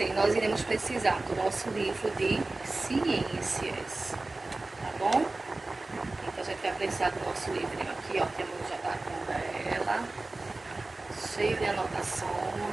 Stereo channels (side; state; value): left; quieter; 3.1 dB